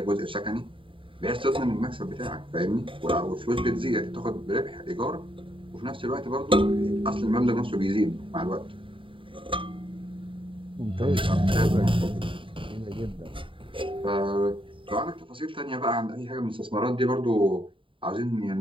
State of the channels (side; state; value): left; late; 0.25 ms